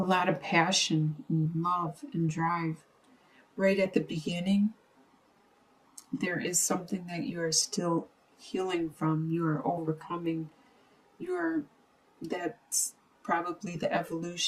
lot of passion and love and drive. Right at the beginning, there is something that you are still healing from. You are overcoming. That's probably the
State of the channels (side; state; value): both; identical; correlation 1.00